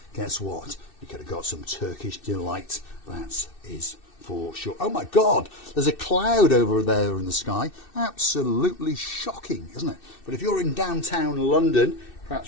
Guess what? You could have got some Turkish delight. That is for sure. Oh my God, there's a cloud over there in the sky. Absolutely shocking, isn't it? But if you're in downtown London,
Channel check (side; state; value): right; late; 2.6 ms